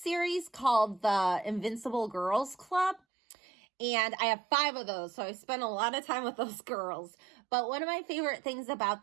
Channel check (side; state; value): left; drops out; at 3.0 s